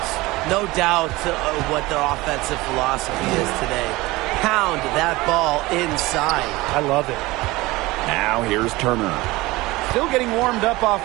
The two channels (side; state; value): left; quieter; 20.5 dB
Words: No doubt what their offensive philosophy is today. Pound that ball inside. I love it. Now here's Turner. Still getting warmed up